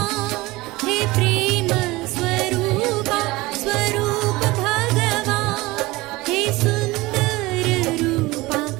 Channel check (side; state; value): left; quieter; 20.7 dB